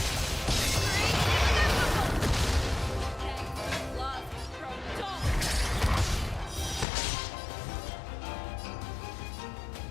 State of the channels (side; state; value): right; drops out; at 6.9 s